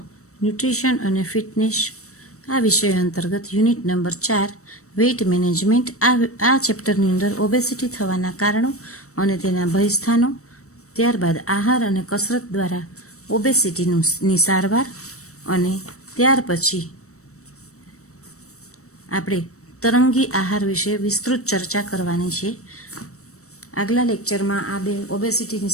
nutrition અને fitness આ વિષય અંતર્ગત યુનિટ નંબર 4 વેઇટ મેનેજમેન્ટ આ ચેપ્ટરની અંદર ઓબેસિટી થવાના કારણો અને તેના ભયસ્થાનો, ત્યારબાદ આહાર અને કસરત દ્વારા ઓબેસિટીની સારવાર અને ત્યાર પછી આપણે તરંગી આહાર વિશે વિસ્તૃત ચર્ચા કરવાની છે. આગલા લેક્ચરમાં આ બે ઓબેસિટીની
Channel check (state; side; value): late; right; 0.65 ms